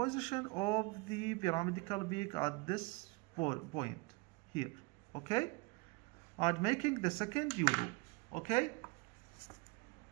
of the pyramidical peak at this point here. Okay, and making the second U-loop. Okay,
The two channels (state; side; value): quieter; left; 26.0 dB